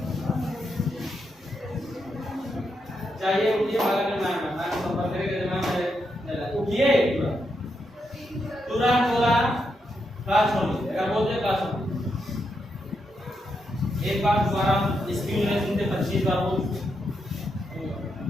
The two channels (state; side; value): normal; both; correlation 0.82